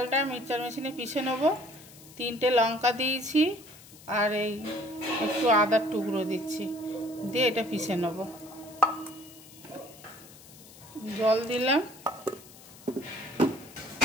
মিক্সচার মেশিনে পিষে নেব। 3টে লঙ্কা দিয়েছি আর এই একটু আদার টুকরো দিচ্ছি, দিয়ে এটা পিষে নেব। জল দিলাম।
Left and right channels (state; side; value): noise; left; hiss, 20 dB below the sound